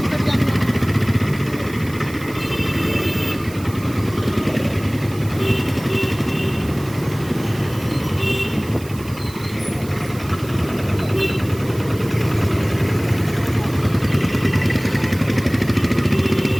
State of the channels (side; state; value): right; noise; hiss, 19 dB below the sound